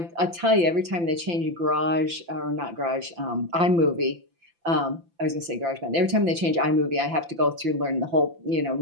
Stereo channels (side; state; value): left; late; 5.9 ms